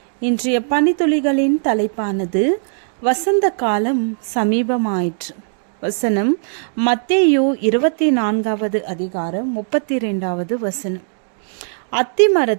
இன்றைய பனித்துளிகளின் தலைப்பானது வசந்த காலம் சமீபமாயிற்று. வசனம் மத்தேயு 24வது அதிகாரம் 32வது வசனம். அத்தி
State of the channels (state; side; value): silent; left; digital silence